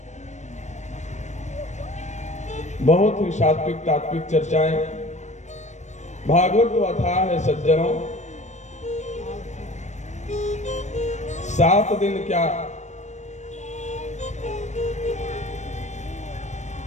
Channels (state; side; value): late; right; 0.34 ms